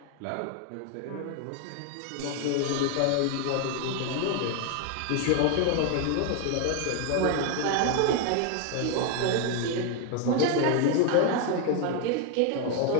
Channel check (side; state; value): both; different; correlation 0.01